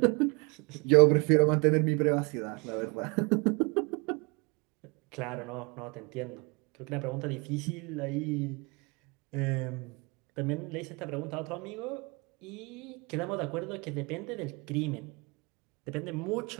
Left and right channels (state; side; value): quieter; left; 29.6 dB